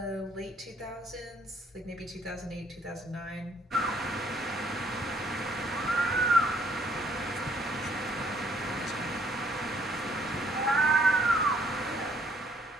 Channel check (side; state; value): both; normal; correlation 0.64